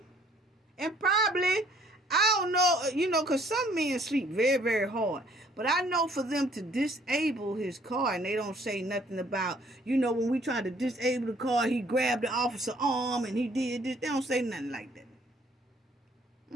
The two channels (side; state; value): both; normal; correlation 0.61